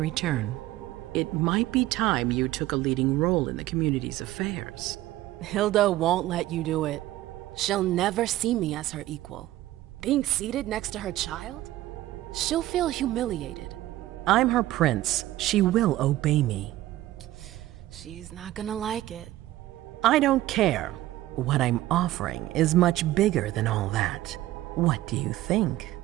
return. It might be time you took a leading role in the community's affairs. Hilda won't let you do it. She'll never see me as her equal. Being seated next to her child? She'll feel humiliated. I'm her prince. She will obey me. She's not gonna like it. I don't care. What I'm offering is much bigger than all that. What do you think?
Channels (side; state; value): left; quieter; 15.7 dB